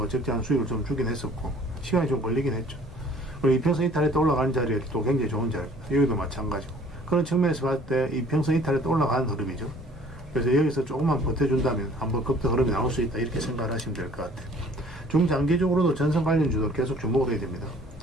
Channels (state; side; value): normal; both; correlation 0.54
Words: 적절한 수익을 좀 주긴 했었고, 시간이 좀 걸리긴 했죠. 그리고 이평선 이탈에 또 올라가는 자리에 또 굉장히 좋은 자리입니다. 여기도 마찬가지고, 그런 측면에서 봤을 때 이평선 이탈에 또 올라가는 흐름이죠. 그래서 여기서 조금만 버텨준다면 한번 급등 흐름이 나올 수 있다, 이렇게 생각을 하시면 될 것 같아요. 중장기적으로도 전선 관련주도 계속 주목을 해야 됩니다.